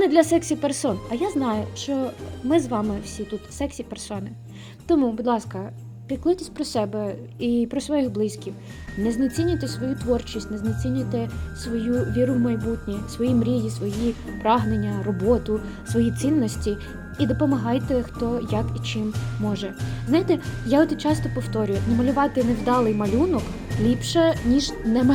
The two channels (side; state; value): both; identical; correlation 1.00